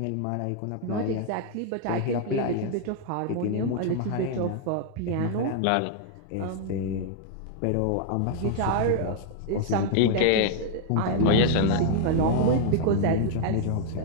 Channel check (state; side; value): different; both; correlation 0.00